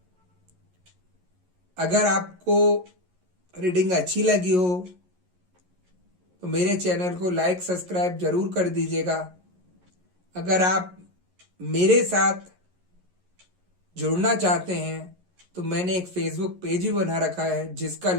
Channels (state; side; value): late; left; 11 ms